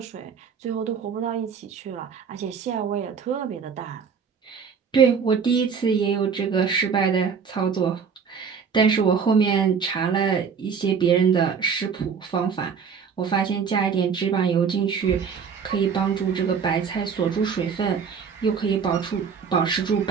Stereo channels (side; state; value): left; quieter; 6.4 dB